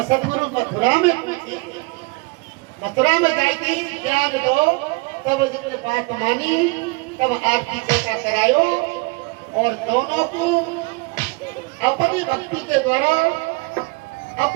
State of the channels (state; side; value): quieter; left; 28.0 dB